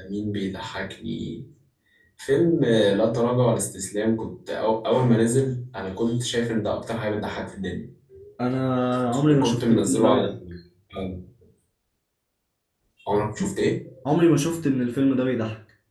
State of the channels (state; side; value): identical; both; correlation 1.00